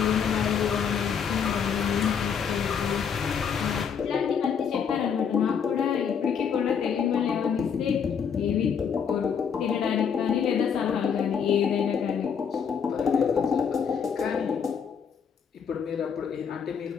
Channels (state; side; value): quieter; right; 7.0 dB